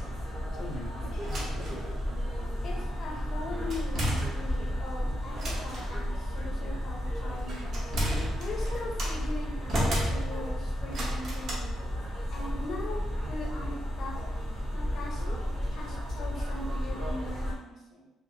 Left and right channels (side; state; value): both; normal; correlation 0.88